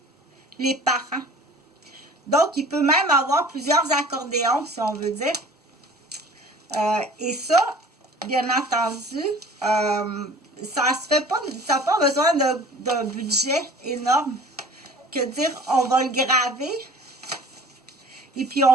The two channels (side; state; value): both; normal; correlation 0.46